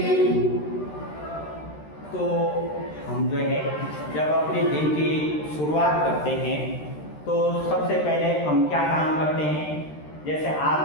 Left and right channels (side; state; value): right; late; 13 ms